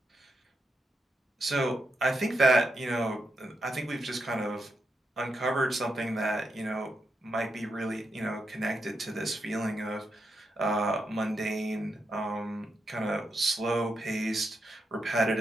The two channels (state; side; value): normal; both; correlation 0.84